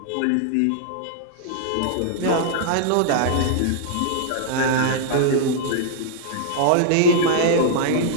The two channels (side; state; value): both; different; correlation -0.01